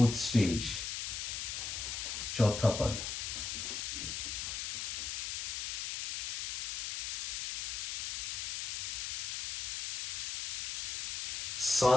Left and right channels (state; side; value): noise; left; hiss, 3 dB below the sound